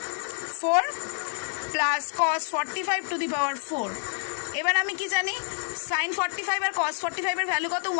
4 plus cos 45 to the power 4। এবার আমি কি জানি? সাইন 45 আর কস 45 এর ভ্যালু কত?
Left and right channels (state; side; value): silent; right; digital silence